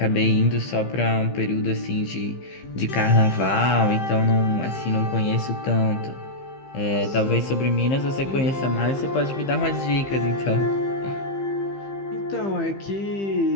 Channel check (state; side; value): late; right; 15 ms